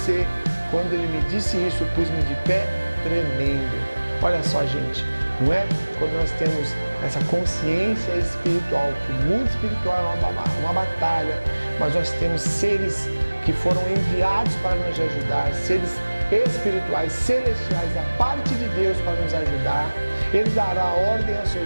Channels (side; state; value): both; inverted; correlation -1.00